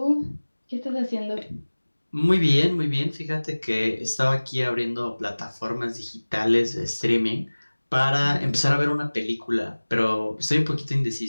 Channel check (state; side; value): inverted; both; correlation -1.00